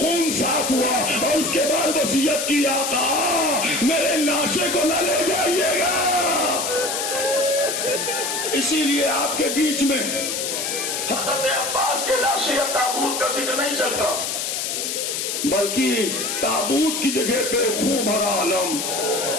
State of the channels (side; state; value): left; noise; hiss, 2 dB below the sound